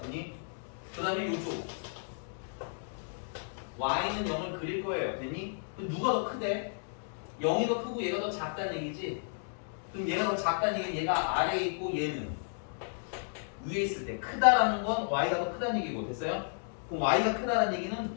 됐니? 그 다음에 이쪽 y는 0을 그릴 거예요. 됐니? 그럼 누가 더 크대? 0이 더 크고 얘가 더 작다는 얘기지? 그럼 얘가 더 작다는 얘기는 얘가 아래에 있고 얘는 위에 있을 때 크다라는 건 y가 더 크다는 얘기고. 됐어요? 그럼 y가 크다는 얘기는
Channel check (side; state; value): right; silent; digital silence